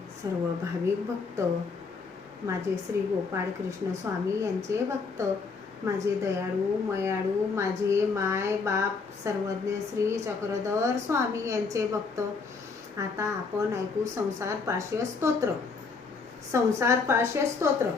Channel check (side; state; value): right; quieter; 4.7 dB